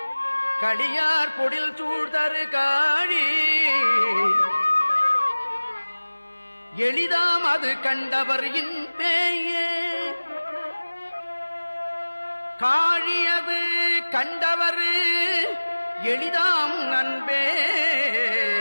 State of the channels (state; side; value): inverted; both; correlation -1.00